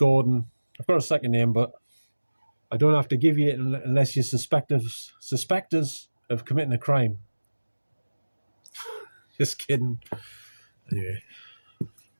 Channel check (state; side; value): inverted; both; correlation -1.00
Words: I've got a second name, but I don't have to give you it unless you suspect us of committing a crime. Just kidding. Anyway.